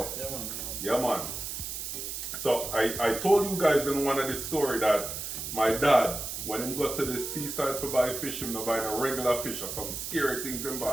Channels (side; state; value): right; noise; hiss, 6 dB below the sound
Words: Yeah, man. Yeah, man. So I told you guys in one of the story that my dad, when he got to the seaside to buy fish, he not buy no regular fish or some scary things in